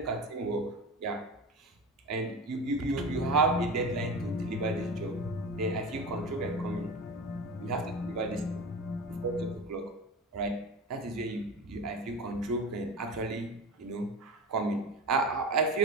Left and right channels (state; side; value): normal; both; correlation 0.28